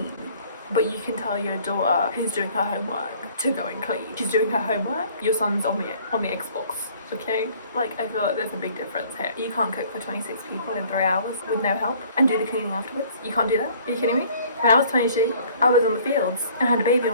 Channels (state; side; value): inverted; both; correlation -0.55